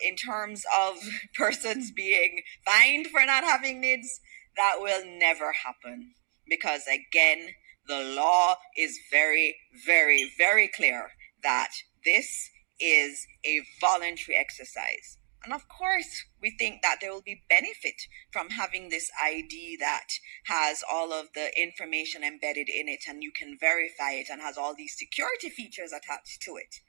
In terms of persons being fined for not having NIDS, that will never happen, because again, the law is very, very, very clear that this is a voluntary exercise. And of course, we think that there will be benefit from having this ID that has all of the information embedded in it and you can verify it and has all these security features attached to it.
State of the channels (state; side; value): silent; left; digital silence